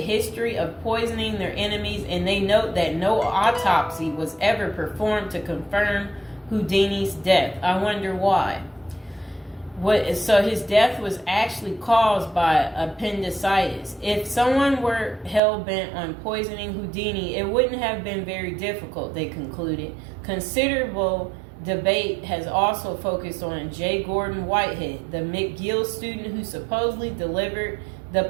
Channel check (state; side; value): drops out; left; at 15.4 s